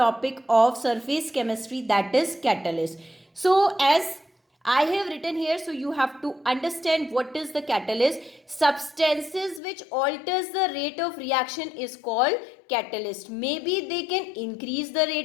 of surface chemistry, that is catalyst. So, as I have written here, so you have to understand what is the catalyst. Substances which alters the rate of reaction is called catalyst. Maybe they can increase the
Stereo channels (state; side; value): drops out; right; at 9.6 s